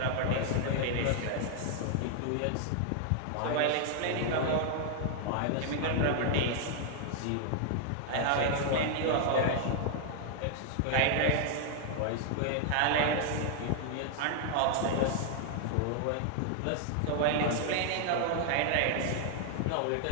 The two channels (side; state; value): both; different; correlation 0.00